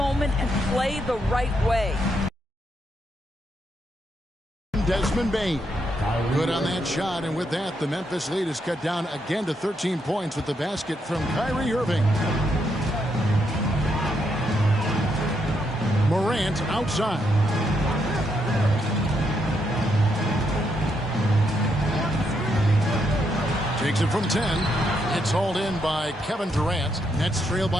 and play the right way. Desmond Bane. Good on that shot, and with that, the Memphis lead is cut down again to 13 points with the basket from Kyrie Irving. Morant outside. Takes it from 10. It's hauled in by Kevin Durant. Nets trail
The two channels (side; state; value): both; normal; correlation 0.78